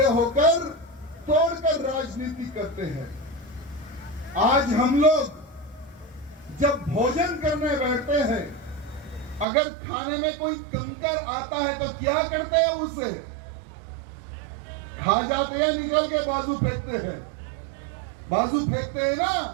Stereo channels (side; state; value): left; drops out; at 9.5 s